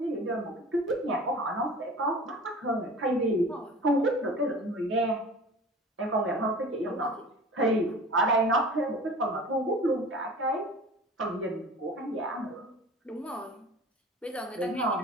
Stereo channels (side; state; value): both; normal; correlation 0.40